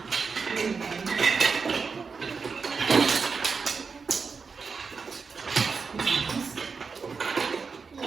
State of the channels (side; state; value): left; quieter; 5.1 dB